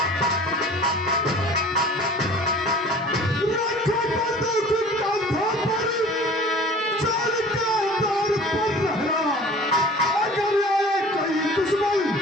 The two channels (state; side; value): normal; both; correlation 0.45